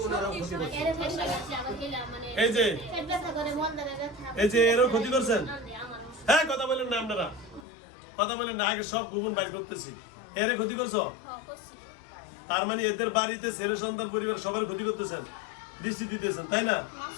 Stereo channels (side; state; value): right; drops out; at 7.7 s